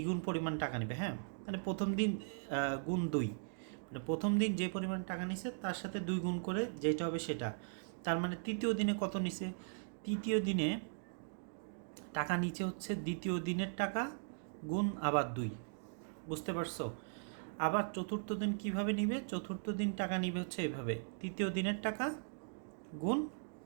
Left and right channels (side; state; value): left; silent; digital silence